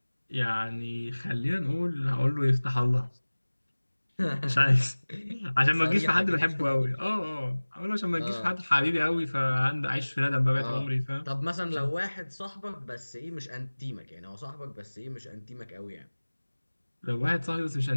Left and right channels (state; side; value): inverted; both; correlation -1.00